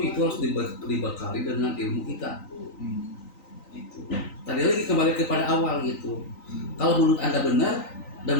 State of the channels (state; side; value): late; right; 3.9 ms